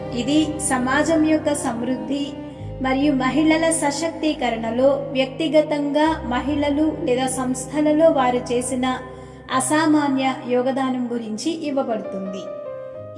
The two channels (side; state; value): both; identical; correlation 1.00